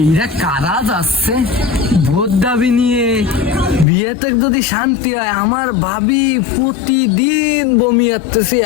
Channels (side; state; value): right; drops out; at 3.9 s